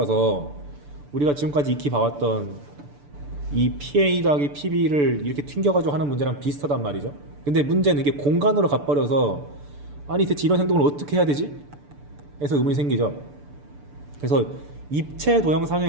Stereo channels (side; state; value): left; late; 6.9 ms